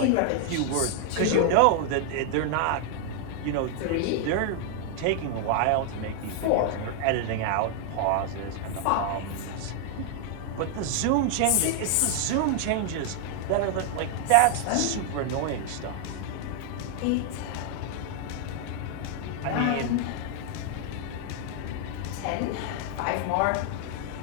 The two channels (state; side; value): different; both; correlation 0.00